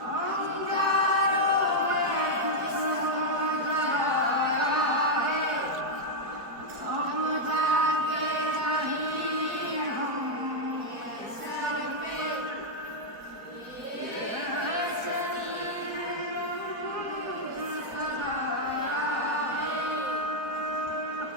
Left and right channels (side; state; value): left; late; 4.3 ms